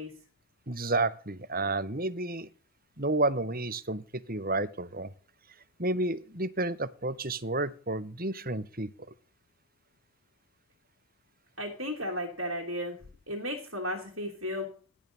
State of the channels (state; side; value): normal; both; correlation -0.09